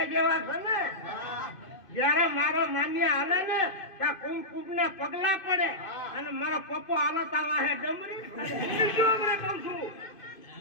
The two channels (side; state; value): right; late; 2.5 ms